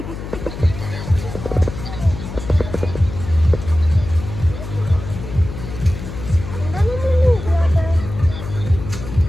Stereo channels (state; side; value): noise; left; hum, 9 dB below the sound